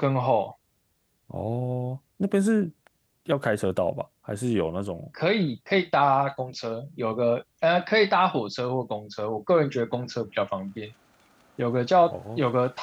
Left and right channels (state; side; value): identical; both; correlation 1.00